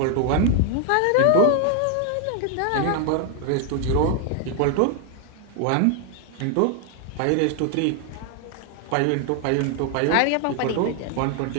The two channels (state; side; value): different; both; correlation 0.00